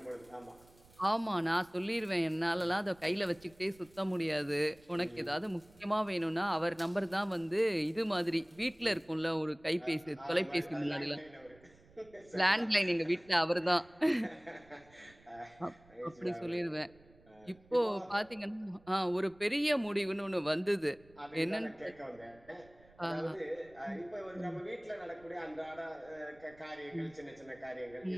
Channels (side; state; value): right; noise; rumble, 27 dB below the sound